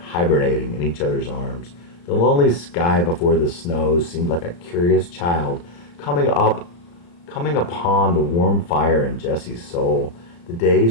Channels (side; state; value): right; late; 35 ms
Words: in each other's arms. The lonely sky before the snows seemed like a curious child coming upon the warm fire in Jesse's soul. The